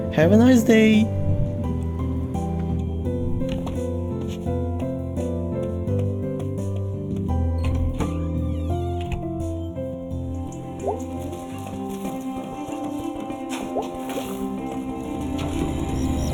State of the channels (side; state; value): both; identical; correlation 1.00